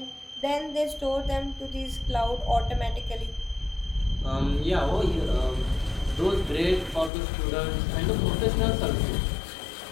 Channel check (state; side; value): drops out; right; at 7.1 s